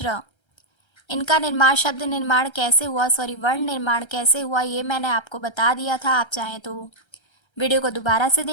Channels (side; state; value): right; late; 1.3 ms